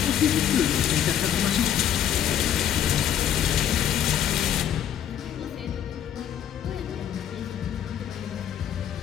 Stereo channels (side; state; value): right; quieter; 9.9 dB